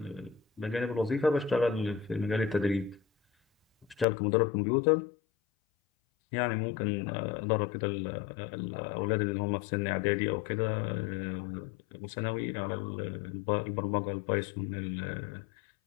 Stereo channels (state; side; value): drops out; right; at 4.0 s